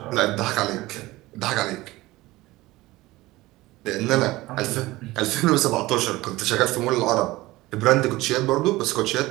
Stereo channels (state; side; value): quieter; left; 19.1 dB